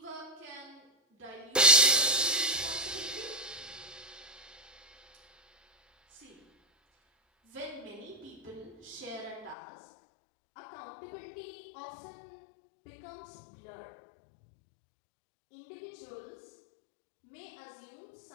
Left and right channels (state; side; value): drops out; right; at 9.6 s